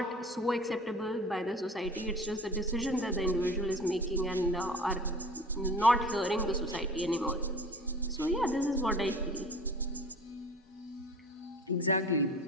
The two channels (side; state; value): both; normal; correlation 0.42